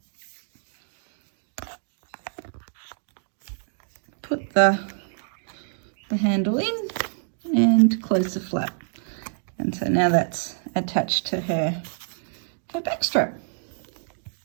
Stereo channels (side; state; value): left; silent; digital silence